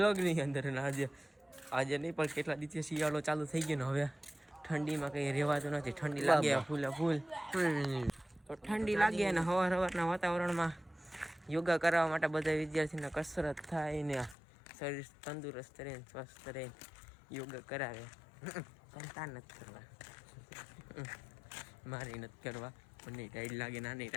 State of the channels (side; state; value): right; drops out; at 14.4 s